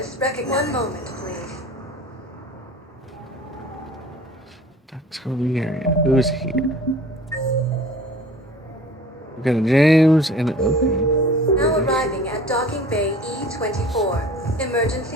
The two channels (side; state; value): both; normal; correlation 0.45